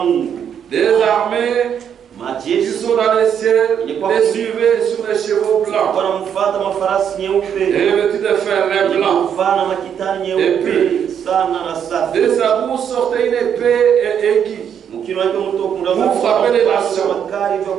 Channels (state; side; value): quieter; left; 8.4 dB